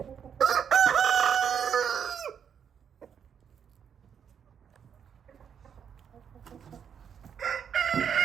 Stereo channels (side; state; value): left; quieter; 7.8 dB